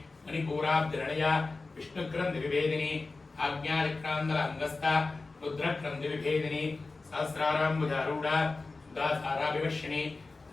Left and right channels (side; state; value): right; quieter; 3.7 dB